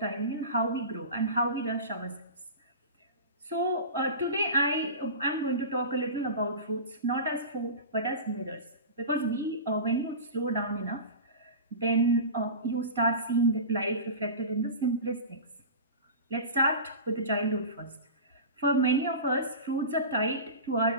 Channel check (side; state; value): both; inverted; correlation -0.31